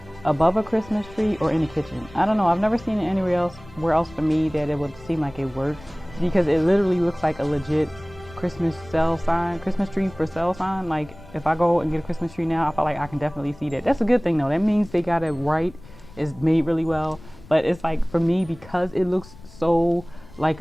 above a Christmas tree, or in the kitchen. I don't know, I've never seen it anywhere else for me that it would seem like it works, because it literally looks like a legit Christmas tree for sale sign. Like if I go and get a Christmas tree now, I feel like I can definitely see that. That's a good thing though. That means they got it right. It's made really well. But it's like, for me, because it looks so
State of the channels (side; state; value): left; noise; rumble, 20 dB below the sound